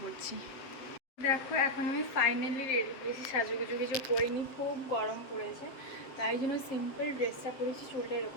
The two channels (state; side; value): late; right; 7.6 ms